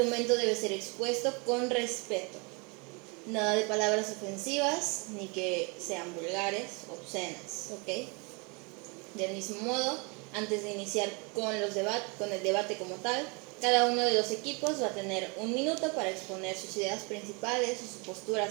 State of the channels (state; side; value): quieter; left; 31.0 dB